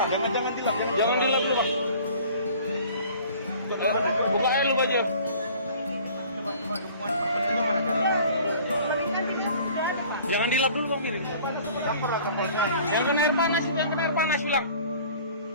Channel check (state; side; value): inverted; both; correlation -0.49